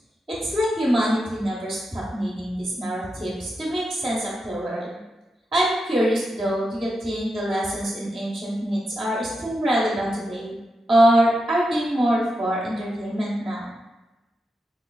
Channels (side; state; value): both; normal; correlation 0.87